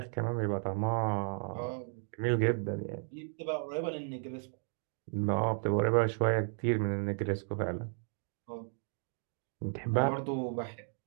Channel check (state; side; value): silent; left; 55 dB below the other